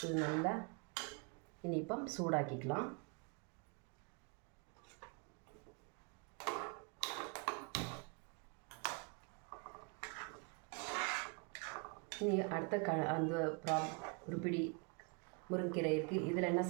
இது நல்லா இனி இப்போ சூடாக்கிக்கலாம். இனி அடுத்த அந்த ஒரு பிடி முருங்கைக்கீரை இருக்குது. இதில் என்ன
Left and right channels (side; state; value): left; quieter; 32.9 dB